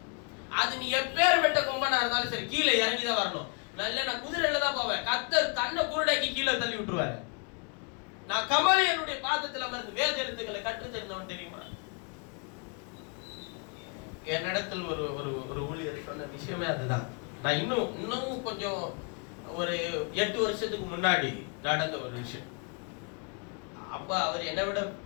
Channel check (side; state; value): right; quieter; 35.6 dB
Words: அது நீ எப்பேர் வெட்ட கொம்பனா இருந்தாலும் சரி கீழே இறங்கிதான் வரணும். நல்ல நான் குதிரையில தான் போவேன். கர்த்தர் கண்ணை குருடாக்கி கீழே தள்ளி விட்டுருவாரு. நான் கமலியனுடைய பாதத்தில் அமர்ந்து வேத எழுத்துக்களை கற்று தெரிந்தவன் தெரியுமா? என்னிடத்தில் ஒரு ஒரு ஒரு ஊழியர் சொன்ன விஷயமே அதுதான். நான் இன்னும் கொஞ்சம் ஒரு 8 வருஷத்துக்கு முன்னாடி நடந்த ஒரு விஷயம். அப்ப அவர் என்னை விட